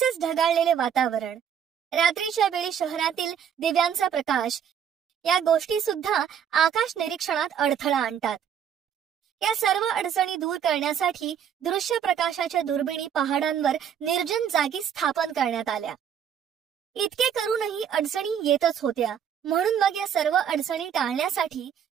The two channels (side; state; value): left; quieter; 8.5 dB